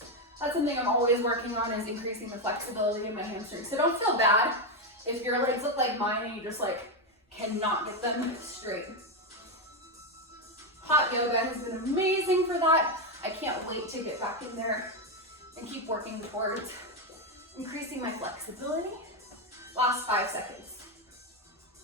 That's something I'm always working on, is increasing the flexibility in my hamstrings. So don't feel bad if your legs look like mine and you just like cannot get them straight. Hot yoga has been amazing for that. I can't wait to get back in there and keep working towards increasing my flexibility. Last 5 seconds.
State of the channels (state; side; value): normal; both; correlation 0.07